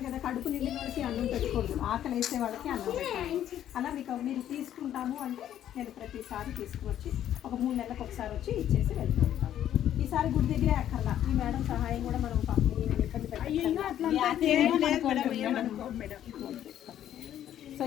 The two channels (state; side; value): quieter; right; 11.1 dB